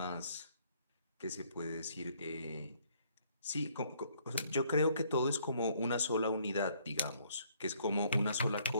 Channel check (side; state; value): both; inverted; correlation -0.65